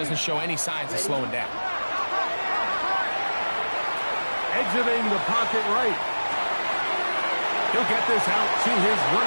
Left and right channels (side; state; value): both; inverted; correlation -1.00